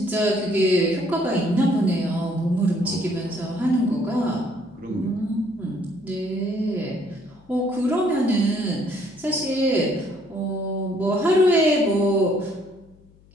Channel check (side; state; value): left; noise; hum, 28 dB below the sound